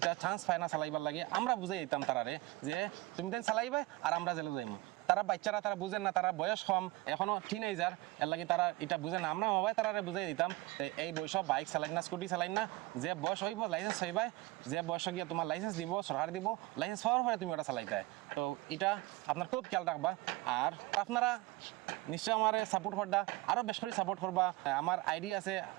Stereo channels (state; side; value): quieter; left; 20.0 dB